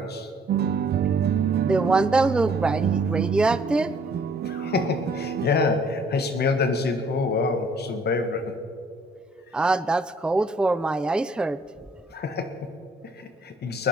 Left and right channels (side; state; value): both; normal; correlation 0.61